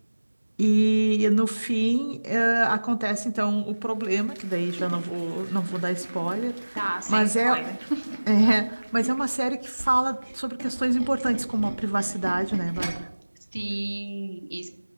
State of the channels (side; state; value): both; inverted; correlation -1.00